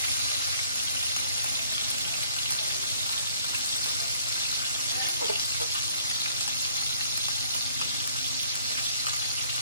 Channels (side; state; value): both; inverted; correlation -0.63